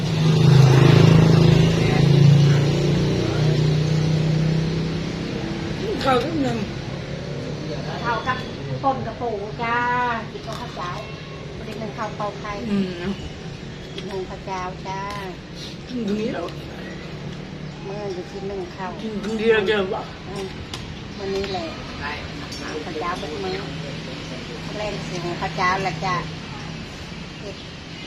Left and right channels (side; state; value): both; identical; correlation 1.00